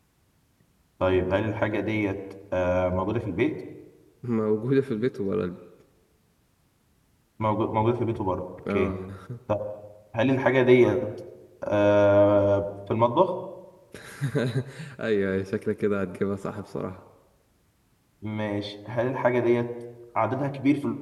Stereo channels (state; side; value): identical; both; correlation 1.00